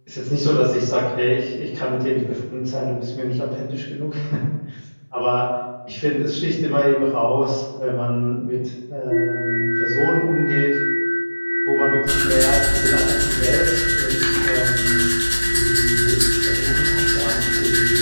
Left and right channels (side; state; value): both; inverted; correlation -1.00